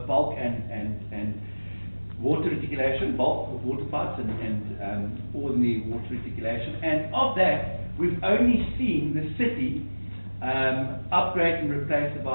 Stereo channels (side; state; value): both; inverted; correlation -1.00